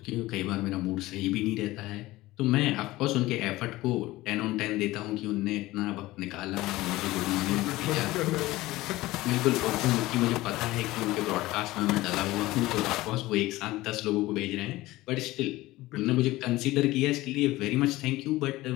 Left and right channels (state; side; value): quieter; right; 18.2 dB